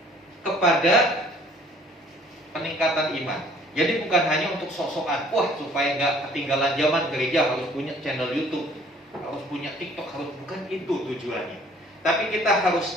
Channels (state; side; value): normal; both; correlation 0.56